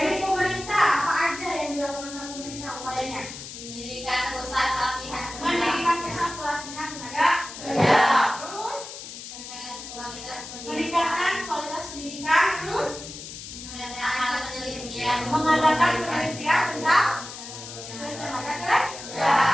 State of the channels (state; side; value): noise; left; hiss, 11 dB below the sound